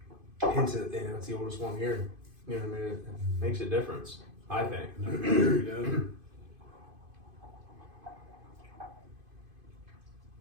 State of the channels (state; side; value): late; left; 2.5 ms